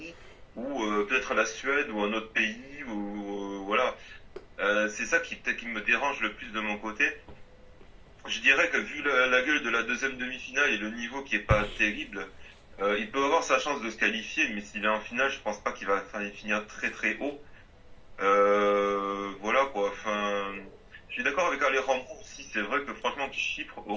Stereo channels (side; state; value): both; identical; correlation 1.00